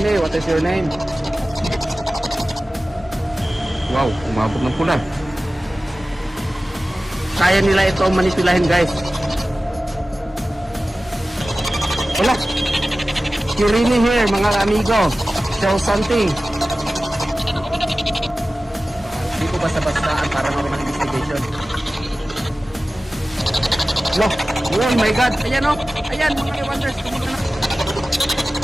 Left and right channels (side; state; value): both; normal; correlation 0.96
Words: what is your name? Wow, umabot ng pula. Kaya nila ito manipulahin, guys. Wala. Kirini here, mga amigo. Show something. Hindi ko basta-bastaan para gawin ng investigation. Look. Oh my God. Ayan o. Ayan, mga wonders. Tumunan na.